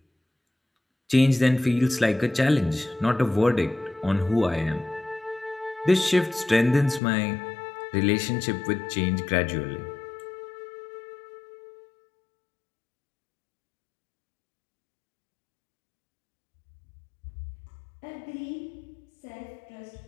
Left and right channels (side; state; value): right; drops out; at 7.0 s